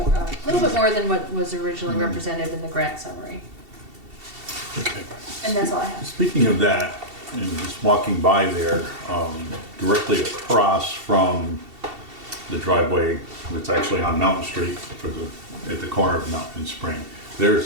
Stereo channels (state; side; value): late; left; 2.7 ms